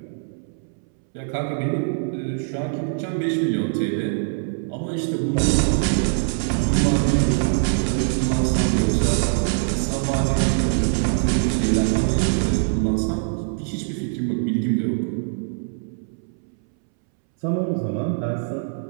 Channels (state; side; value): silent; left; 63 dB below the other